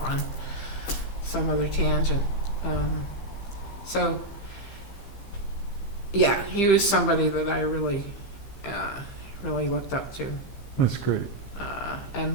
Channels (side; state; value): right; late; 15 ms